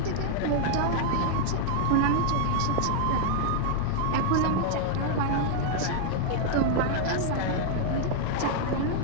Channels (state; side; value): different; both; correlation -0.01